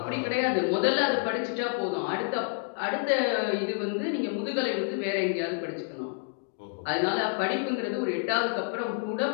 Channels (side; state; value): right; silent; 57 dB below the other